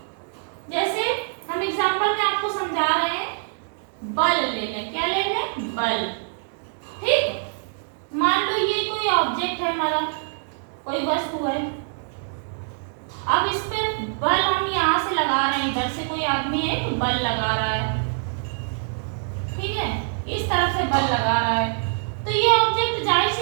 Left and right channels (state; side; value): silent; left; digital silence